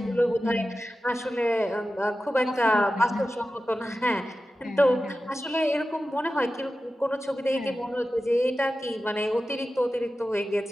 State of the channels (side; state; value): both; normal; correlation 0.93